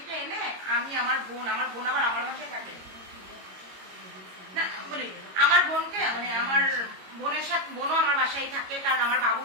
এনে আমি আমার বোন আবার আমার বাসায় থাকে না, বলি আমার বোনকে মানে আমার বোনের সাথে, বোনও আমার বাসায় থাকে, কারণ আমার বাবু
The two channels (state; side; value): late; left; 22 ms